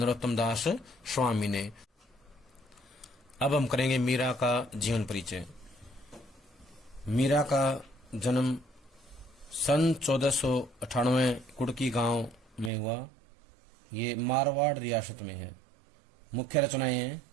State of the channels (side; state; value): left; drops out; at 12.7 s